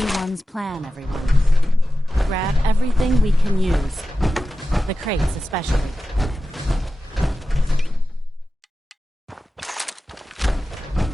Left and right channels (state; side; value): normal; both; correlation 0.93